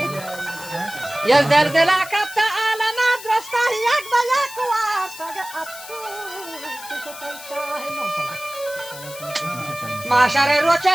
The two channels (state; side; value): noise; left; hiss, 14 dB below the sound